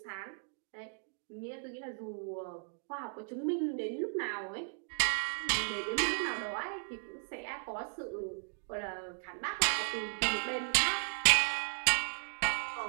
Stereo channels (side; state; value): left; silent; 54 dB below the other